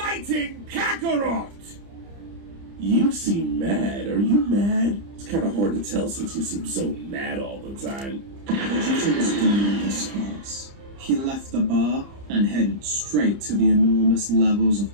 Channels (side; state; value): left; late; 30 ms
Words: Kakarot? You seem mad. Are you mad? It's kind of hard to tell since you seem so mad all the time. Vegeta was done with this class. He left the bar and headed straight to the enormous levels of